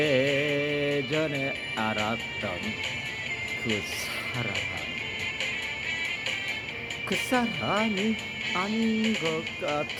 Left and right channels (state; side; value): identical; both; correlation 1.00